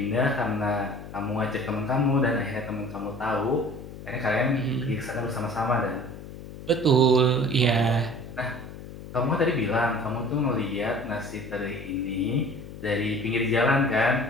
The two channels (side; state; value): left; noise; hum, 13 dB below the sound